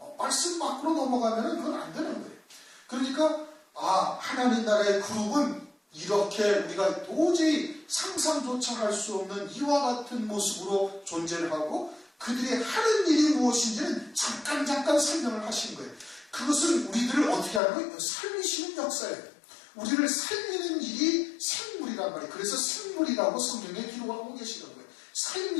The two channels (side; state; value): right; drops out; at 17.6 s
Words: 말씀 밖으로 넘어가면 그건 안 되는 거예요. 그러니까 하나님 나라의 그룹은 이렇게 우리가 도저히 상상조차 할 수 없는 이와 같은 모습으로 존재를 하고 그들이 하는 일이 무엇인지는 잠깐 설명을 하신 거예요. 그것은 우리들을 어떻게 하는 거예요? 살리시는 역사예요. 우리를 살리는 일이 생물이란 말이에요. 그래서 생물이라고 성경에 기록을 하고 계시는 거예요.